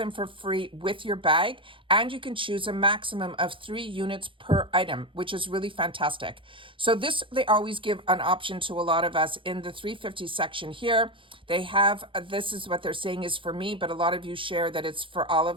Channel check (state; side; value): late; left; 0.25 ms